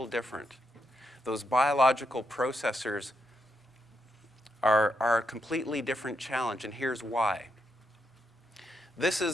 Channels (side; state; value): both; normal; correlation 0.81